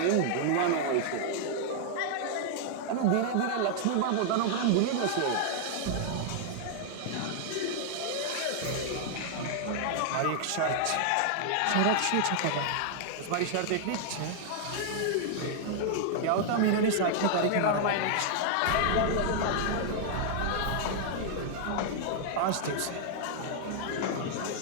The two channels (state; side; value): different; both; correlation -0.01